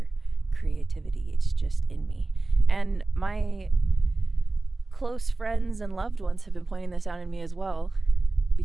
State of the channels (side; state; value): left; quieter; 3.3 dB